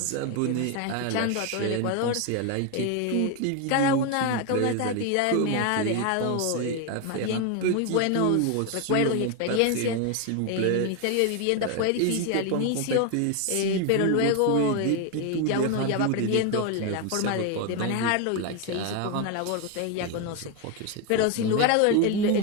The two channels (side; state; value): both; different; correlation 0.01